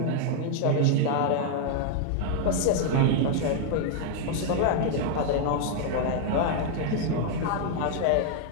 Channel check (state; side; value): different; both; correlation 0.00